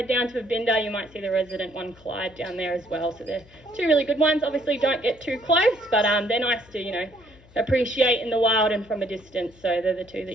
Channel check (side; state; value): left; noise; hum, 26 dB below the sound